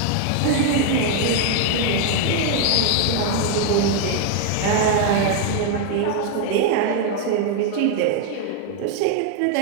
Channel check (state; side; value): different; both; correlation 0.00